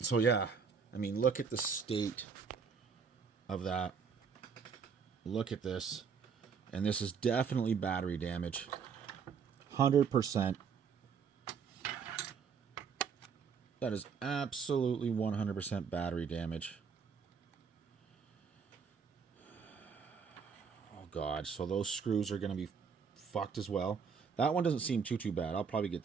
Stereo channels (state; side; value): quieter; left; 6.1 dB